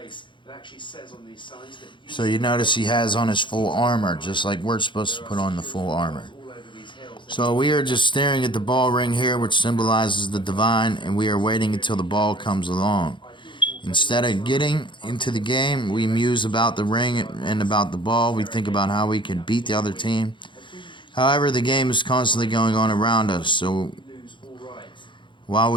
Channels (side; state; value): right; late; 0.23 ms